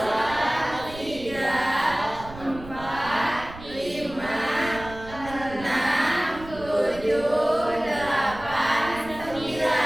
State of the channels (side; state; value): right; noise; rumble, 15 dB below the sound